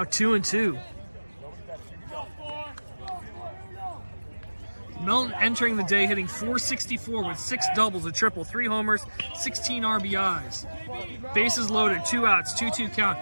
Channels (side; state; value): both; inverted; correlation -1.00